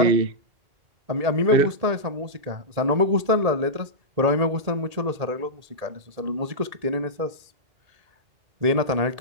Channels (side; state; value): left; late; 1.8 ms